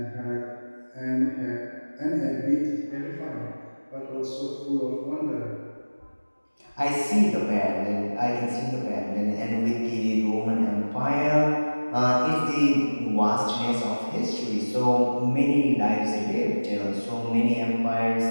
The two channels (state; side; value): inverted; both; correlation -1.00